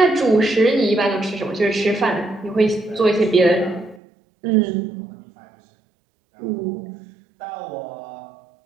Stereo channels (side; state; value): left; drops out; at 4.0 s